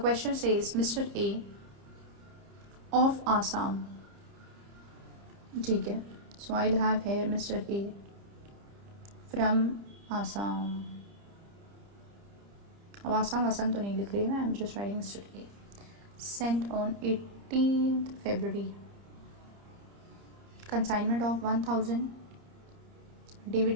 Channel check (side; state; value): left; late; 30 ms